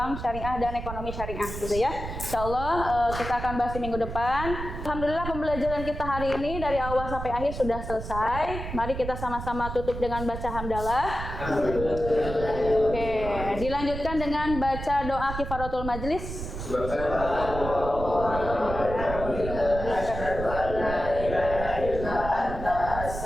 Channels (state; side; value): noise; right; rumble, 7 dB below the sound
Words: syariah dan ekonomi syariah gitu ya. Insya Allah kita akan bahas di minggu depan. Alhamdulillah pembelajaran kita hari ini dari awal sampai akhir sudah selesai. Mari kita sama-sama tutup dengan baca hamdalah. Oke, dilanjutkan dengan baca doa kifaratul majlis.